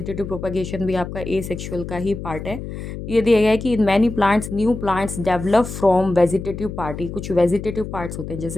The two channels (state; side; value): noise; left; hum, 8 dB below the sound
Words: प्रोपगेशन भी आपका ए सेक्सुअल का ही पार्ट है। ये दिया गया है कि in many plants new plants develop from vegetative part. कुछ वेजिटेटिव पार्ट्स होते हैं,